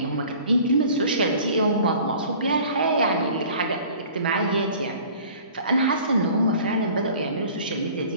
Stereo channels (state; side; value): inverted; both; correlation -0.47